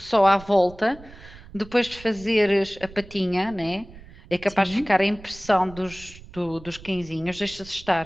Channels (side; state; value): right; noise; rumble, 19 dB below the sound